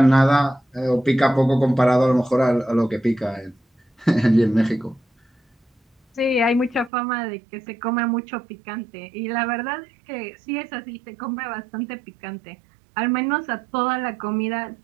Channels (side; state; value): left; drops out; at 6.9 s